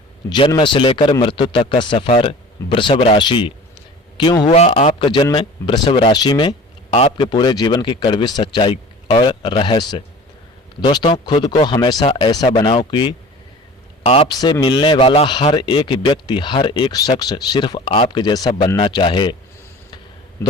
जन्म से लेकर मृत्यु तक का सफ़र वृषभ राशि। क्यों हुआ आपका जन्म वृषभ राशि में? आपके पूरे जीवन की कड़वी सच्चाई और रहस्य। दोस्तों, खुद को हमेशा ऐसा बनाओ कि आपसे मिलने वाला हर एक व्यक्ति, हर एक शख्स सिर्फ आपके जैसा बनना चाहे।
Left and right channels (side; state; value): both; normal; correlation 0.42